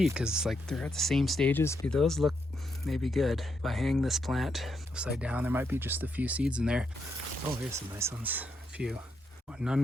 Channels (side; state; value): both; normal; correlation 0.80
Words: because like they're at the same stages. Those look maybe good. If I hang this plant upside down, there might be just a few seeds in there. Oh, here's some nice ones, a few.